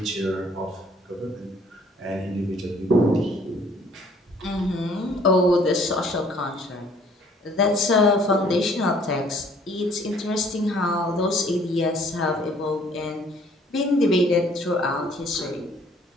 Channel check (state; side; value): normal; both; correlation 0.58